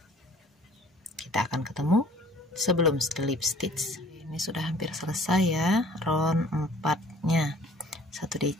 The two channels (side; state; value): both; normal; correlation 0.53